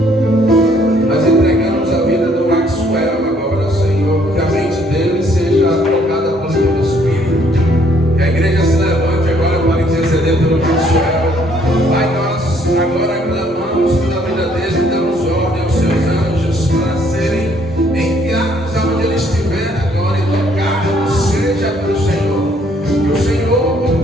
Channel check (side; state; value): both; normal; correlation 0.65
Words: Nós entregamos a vida do Maxwell agora, Senhor, que a mente dele seja tocada por teu Espírito. Que a igreja se levante agora para interceder pelo Maxwell. Pai, nós agora clamamos pela vida dele, damos ordem aos seus anjos para serem enviados aonde ele estiver agora e tocados, seja pelo Senhor. Que o Senhor